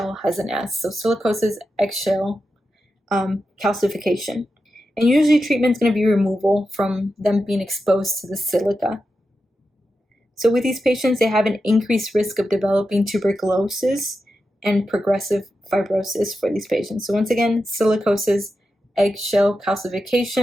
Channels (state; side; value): normal; both; correlation 0.89